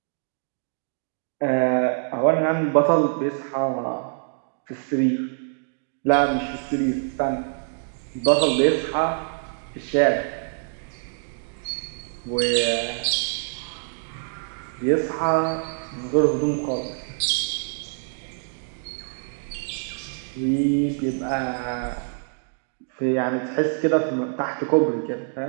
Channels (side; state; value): left; silent; digital silence